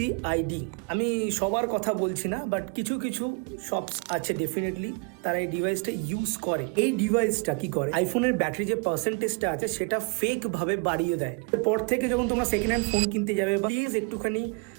আমি সবার কথা বলছি না, বাট কিছু কিছু শপস আছে ডেফিনেটলি তারা এই ডিভাইসটা ইউজ করে। এই ডিভাইসটা কি করে, আইফোনের ব্যাটারি যে পার্সেন্টেজটা আছে সেটা ফেক ভাবে বাড়িয়ে দেয়। পর থেকে যখন তোমরা সেকেন্ড হ্যান্ড ফোন কিনতে যাবে, বা প্লিজ একটুখানি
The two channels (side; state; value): left; quieter; 35.1 dB